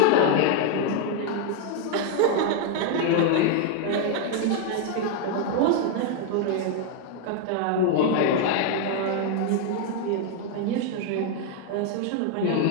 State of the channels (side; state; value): both; different; correlation 0.00